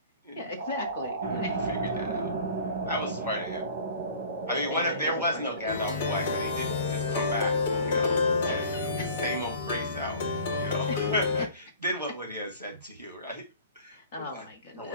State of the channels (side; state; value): both; inverted; correlation -0.46